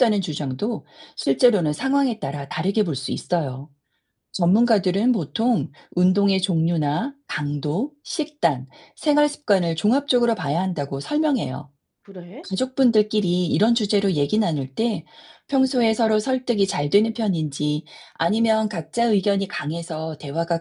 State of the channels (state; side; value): identical; both; correlation 1.00